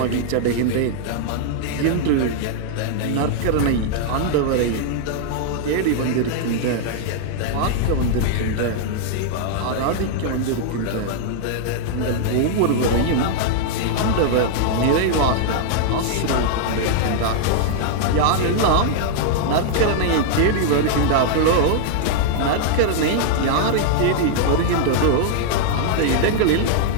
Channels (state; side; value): different; both; correlation -0.01